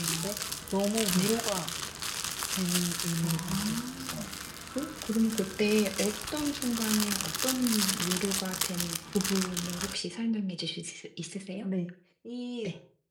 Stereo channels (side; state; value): both; identical; correlation 1.00